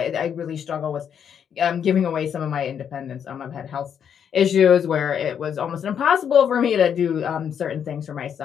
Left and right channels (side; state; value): right; quieter; 8.1 dB